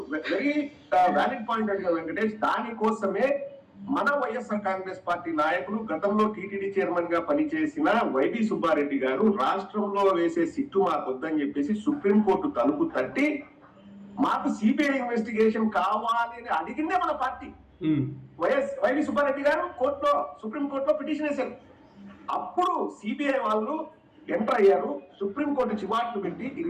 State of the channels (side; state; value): both; identical; correlation 1.00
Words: వెరీ వ్యాలిడ్ పాయింట్ అడిగారు వెంకటేష్. దానికోసమే మన వైఎస్ఆర్ కాంగ్రెస్ పార్టీ నాయకులు, గతంలో టీటీడీ చైర్మన్ గా పనిచేసిన వైవి సుబ్బారెడ్డి గారు రాష్ట్రంలో వేసే సిట్టు మాకు వద్దని చెప్పేసి సుప్రీంకోర్టు తలుపు తట్టి మాకు సిబిఐ ఇన్వెస్టిగేషన్ కావాలి అని అడిగిందే మన పార్టీ. వైవి సుబ్బారెడ్డి గారు సుప్రీంకోర్టులో పిటిషన్ వేశారు. అప్పుడు సిబిఐ వాళ్ళు ఎంటర్ అయ్యారు. సుప్రీంకోర్టు చివాట్లు పెట్టి ఇది